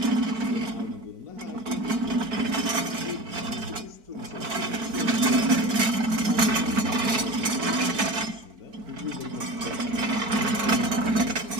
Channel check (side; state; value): left; late; 4.5 ms